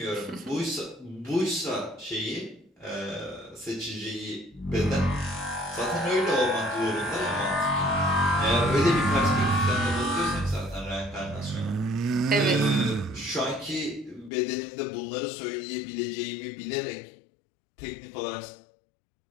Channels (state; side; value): drops out; right; at 14.3 s